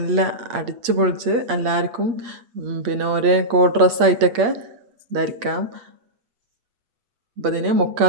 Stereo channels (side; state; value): left; late; 8.6 ms